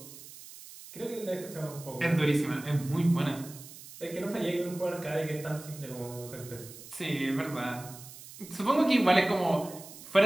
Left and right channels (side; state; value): right; noise; hiss, 16 dB below the sound